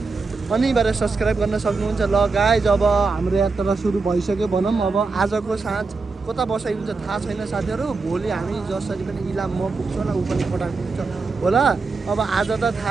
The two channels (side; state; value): left; quieter; 4.2 dB